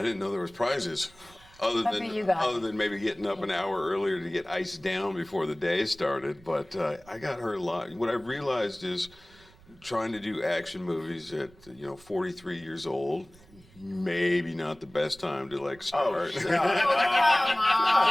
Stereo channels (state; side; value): noise; right; rumble, 26 dB below the sound